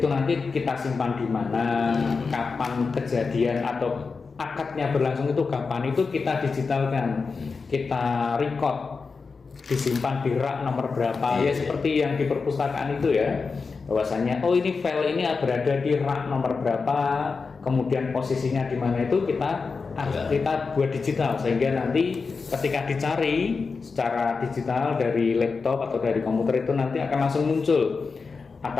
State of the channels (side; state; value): right; quieter; 4.7 dB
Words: nanti kita simpan di mana, kapan kejadian atau akadnya berlangsung itu kapan, itu kita digitalkan, kita record, disimpan di rak nomor berapa ya, seperti yang di perpustakaan itu ya, bahwasanya ini file ini berada di rak nomor berapa, kemudian posisinya di mana, itu kita buat digital sehingga nanti ketika dicari secara digital dari laptop atau dari komputer itu nanti akan langsung muncul